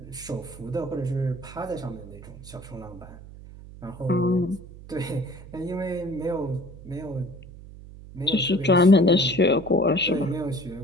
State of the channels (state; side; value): noise; right; hum, 16 dB below the sound